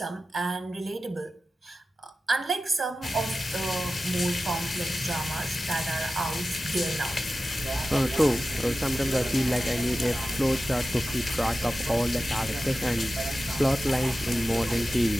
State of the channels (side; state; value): both; normal; correlation 0.94